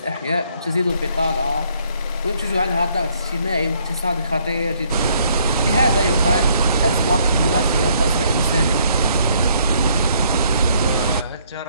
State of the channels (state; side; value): inverted; both; correlation -0.66